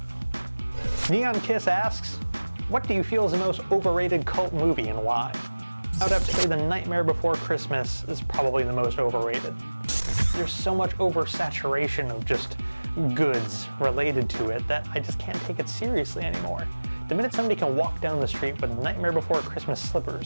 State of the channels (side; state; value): both; inverted; correlation -1.00